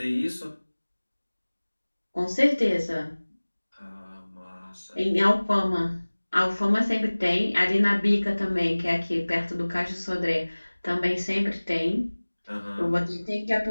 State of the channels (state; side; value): inverted; both; correlation -1.00